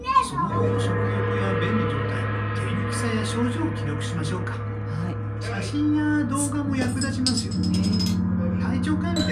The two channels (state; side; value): identical; both; correlation 1.00